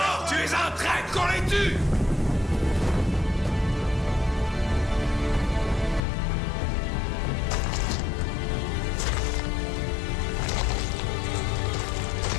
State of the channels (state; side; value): drops out; right; at 6.0 s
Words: Tu es un traître, qu'on les tue!